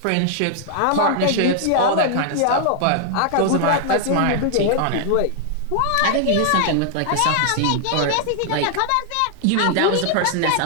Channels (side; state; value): both; different; correlation 0.00